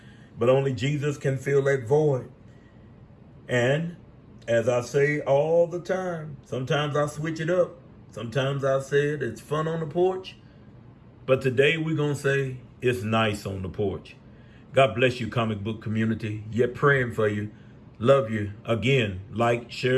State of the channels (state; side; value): identical; both; correlation 1.00